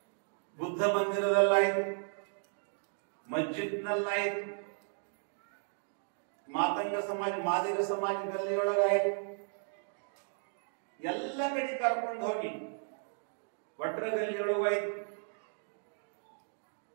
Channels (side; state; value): left; silent; digital silence